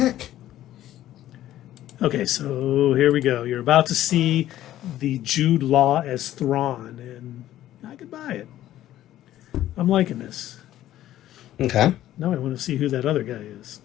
Okay, so here we go. You're about to see the Jude Law as Thrawn, and I could buy it. I'm liking this. Okay. Now I want to see who that other guy is.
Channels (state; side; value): quieter; right; 13.3 dB